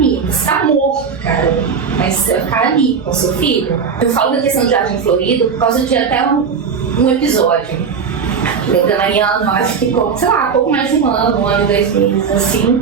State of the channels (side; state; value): left; quieter; 6.1 dB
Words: Você tá morto, cara, mas você vai ficar ali com seu filho. Eu falo da questão do Jardim Florido por causa de até um episódio. Da Mariana, acho que ficou, sei lá, pouco mais de um ano, 2 meses, assim.